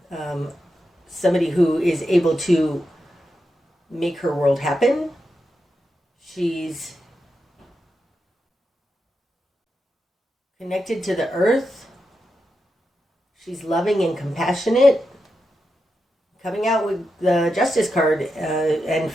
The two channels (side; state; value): both; normal; correlation 0.87